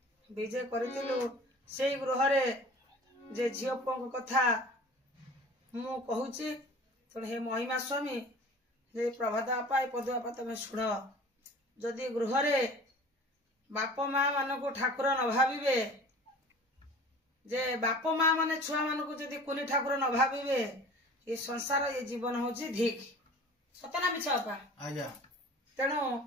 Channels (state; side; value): normal; both; correlation 0.43